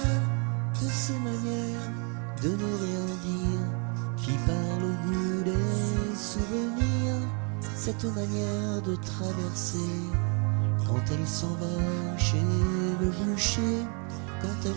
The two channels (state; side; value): quieter; left; 36.1 dB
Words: de ces manières de ne rien dire, qui parle au goût des souvenirs. Cette manière de traverser quand elle s'en va chez le boucher, quand